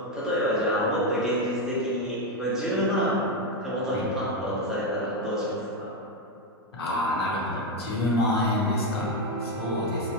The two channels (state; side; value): normal; both; correlation 0.07